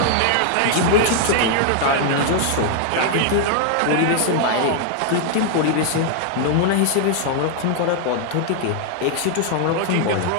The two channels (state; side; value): different; both; correlation 0.00